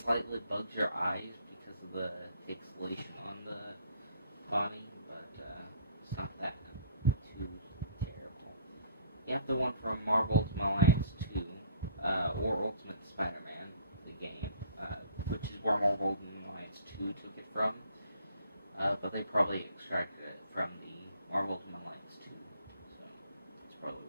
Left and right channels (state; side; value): inverted; both; correlation -0.56